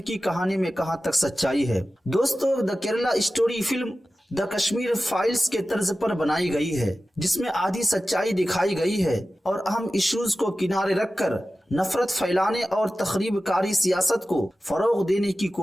की कहानी में कहां तक सच्चाई है। दोस्तों the Kerala story film the Kashmir files के तर्ज पर बनाई गई है, जिसमें आधी सच्चाई दिखाई गई है और अहम इश्यूज को किनारे रखकर नफरत फैलाने और तखरीबकारी सियासत को फरोग देने की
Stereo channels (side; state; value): both; normal; correlation 0.95